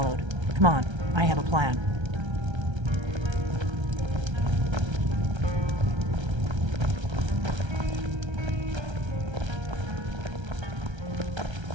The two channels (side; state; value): left; late; 1.3 ms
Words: Come on, I have a plan.